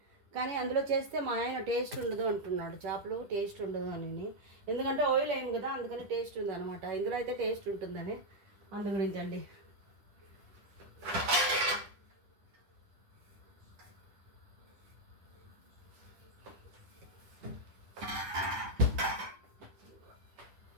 కానీ అందులో చేస్తే మా ఆయన టేస్ట్ ఉండదు అంటున్నాడు, చేపలు టేస్ట్ ఉండదు అని. ఎందుకంటే ఆయిల్ వేయం కదా, అందుకని టేస్ట్ ఉంది అనమాట. ఇందులో అయితే టేస్ట్ ఉంటుందని, అందు గురించి అండి.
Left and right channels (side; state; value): left; late; 10 ms